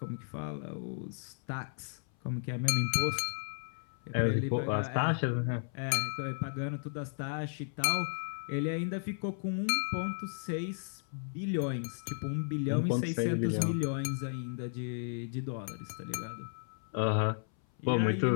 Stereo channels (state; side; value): silent; right; 55 dB below the other